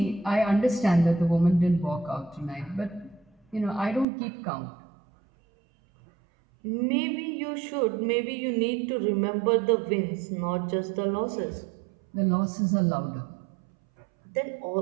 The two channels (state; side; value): drops out; left; at 4.0 s